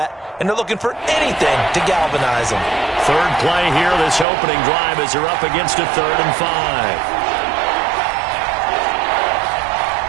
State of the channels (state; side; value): drops out; left; at 4.2 s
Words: and they're looking for anything to galvanize them. Third play here, this opening drive as they're up against a 3rd and